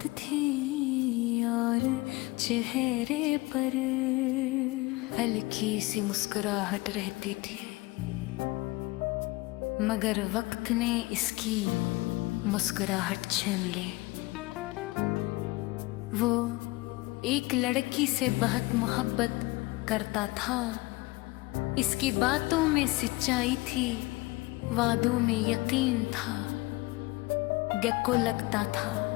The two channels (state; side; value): quieter; right; 22.4 dB